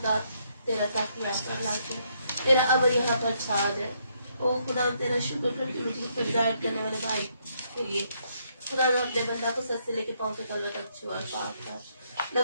तेरा तख्त महफूज लाके तेरा अबर यहाँ पर छा दे। ओ खुदा तेरा शुक्र करती मुझे पर हिदायत करने वाले भाई के लिए खुदा ने अपने बंदा को सर से लेके पाँव तक अल्लाह तक छुआ और पाक कर,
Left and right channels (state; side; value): inverted; both; correlation -0.73